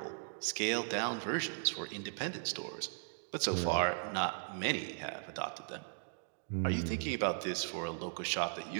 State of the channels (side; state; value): left; silent; digital silence